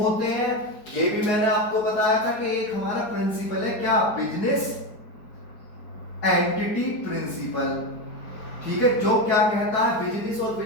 हैं ये भी मैंने आपको बताया था कि एक हमारा प्रिंसिपल है, क्या? बिजनेस एंटिटी प्रिंसिपल, ठीक है, जो क्या कहता है बिजनेस और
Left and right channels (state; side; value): late; right; 4.6 ms